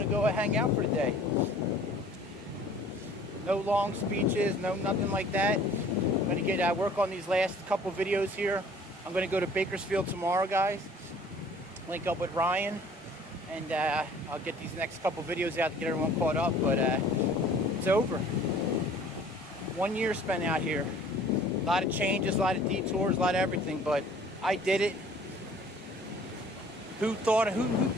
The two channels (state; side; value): normal; both; correlation 0.52